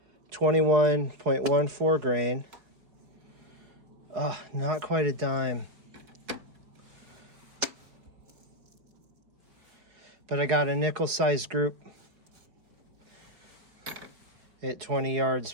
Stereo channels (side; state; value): left; late; 4.8 ms